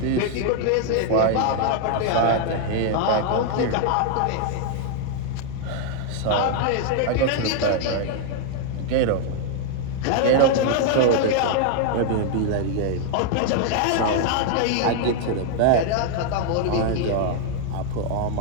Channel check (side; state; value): both; different; correlation 0.00